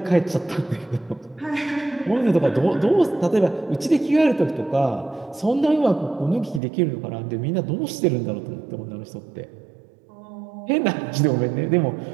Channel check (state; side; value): drops out; left; at 6.6 s